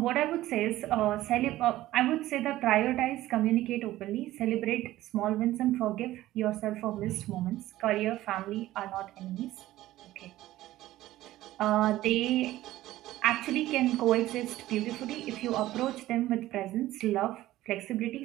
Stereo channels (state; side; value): quieter; left; 15.4 dB